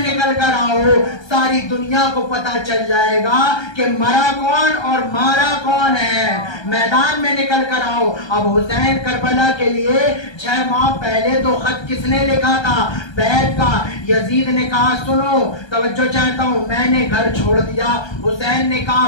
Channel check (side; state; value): right; late; 1.3 ms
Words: कर आओ, सारी दुनिया को पता चल जाएगा कि मरा कौन और मारा कौन है। मैदान में निकल कर आओ। अब हुसैन करबला के लिए 6 माह पहले तो खत किसने लिखा था, बैत का। यजीद ने कहा सुनो तवज्जो चाहता हूँ, मैंने घर छोड़ दिया। हुसैन ने कहा